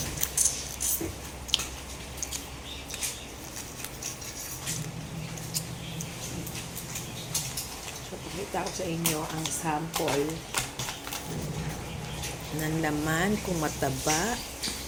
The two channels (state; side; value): identical; both; correlation 1.00